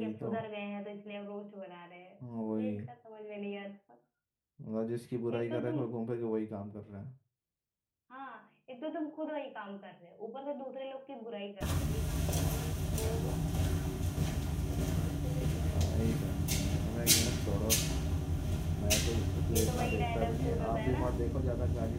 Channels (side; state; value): both; identical; correlation 1.00